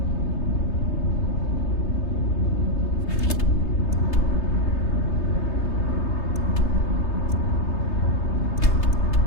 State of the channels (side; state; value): right; late; 3.3 ms